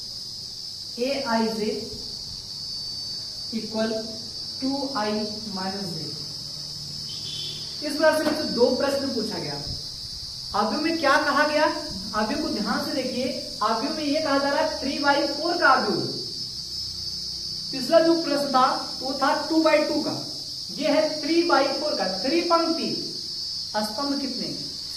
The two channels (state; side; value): identical; both; correlation 1.00